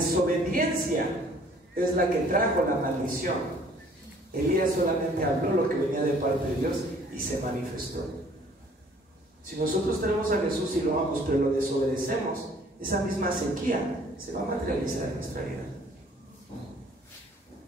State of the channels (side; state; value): both; normal; correlation 0.57